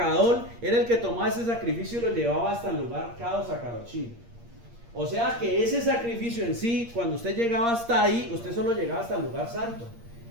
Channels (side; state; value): left; late; 8.6 ms